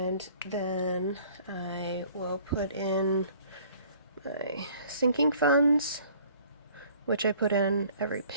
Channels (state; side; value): inverted; both; correlation -0.54